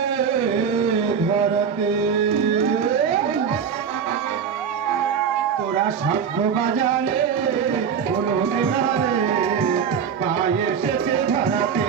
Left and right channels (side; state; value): left; quieter; 7.1 dB